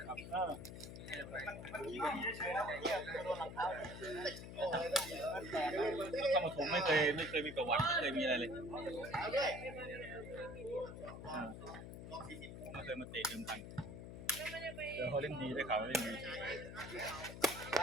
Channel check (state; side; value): noise; left; hum, 10 dB below the sound